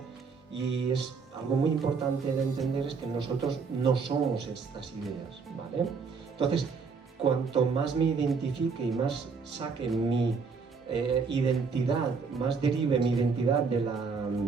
y es algo muy importante de entender, es que nosotros no somos estas ideas, ¿vale? Entonces, cuanto más me identifique y más saque mi identidad, más derive mi identidad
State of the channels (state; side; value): quieter; left; 5.2 dB